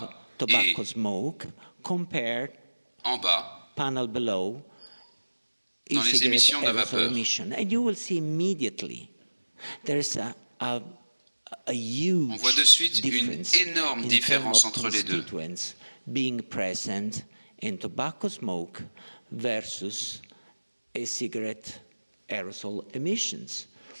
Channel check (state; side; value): inverted; both; correlation -1.00